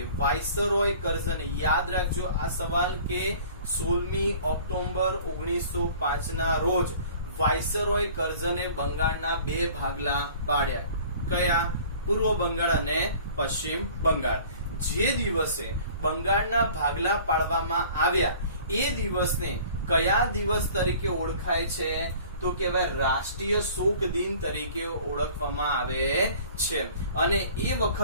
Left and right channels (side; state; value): both; inverted; correlation -0.48